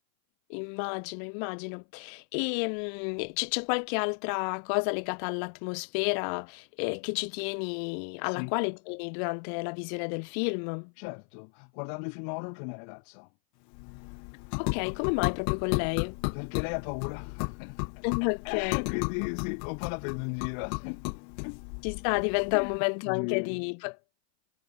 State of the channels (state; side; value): silent; right; 56 dB below the other